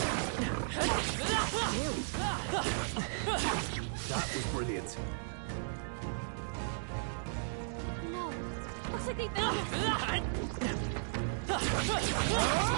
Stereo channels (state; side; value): silent; left; digital silence